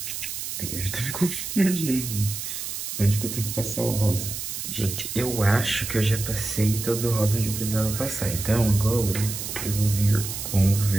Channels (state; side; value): noise; right; hiss, 6 dB below the sound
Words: Aí eu já tô me confundindo, gente. Onde que eu tenho que passar o rosa? Gente, eu acho que eu já passei todo o rosa onde eu precisava passar. Então agora eu vou vir com o